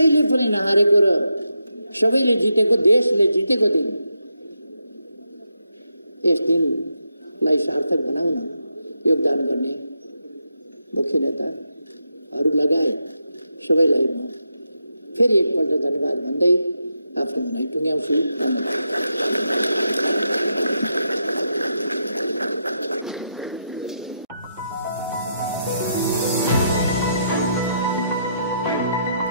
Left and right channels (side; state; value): both; inverted; correlation -0.82